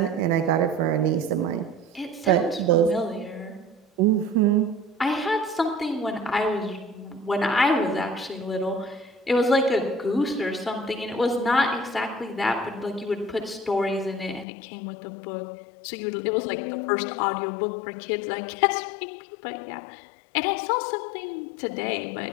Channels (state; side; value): drops out; right; at 14.5 s